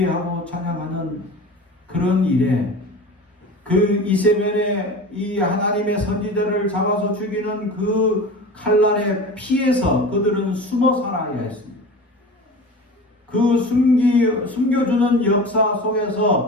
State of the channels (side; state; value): both; normal; correlation 0.34